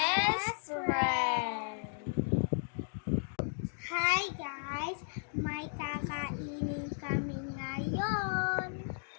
friends. Hi guys! May kakainin kami ngayon.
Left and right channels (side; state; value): right; silent; digital silence